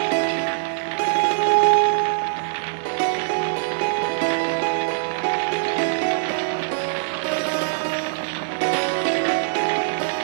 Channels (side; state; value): left; silent; digital silence